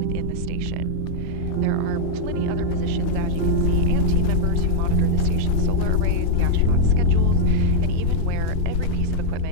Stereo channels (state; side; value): different; both; correlation -0.01